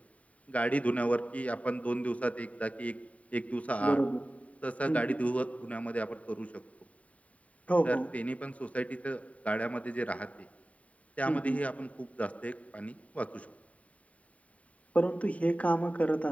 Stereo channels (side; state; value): right; late; 0.067 ms